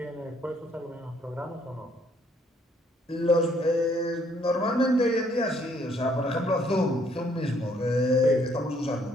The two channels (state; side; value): normal; both; correlation 0.66